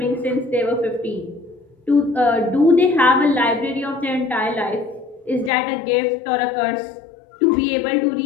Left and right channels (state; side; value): drops out; right; at 5.5 s